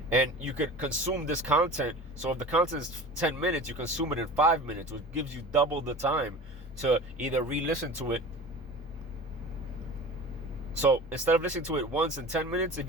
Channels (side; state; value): both; normal; correlation 0.36